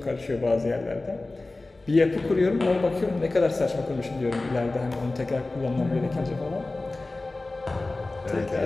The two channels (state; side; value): quieter; right; 3.1 dB